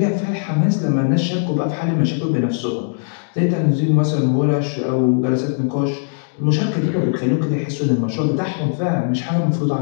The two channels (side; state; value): right; silent; digital silence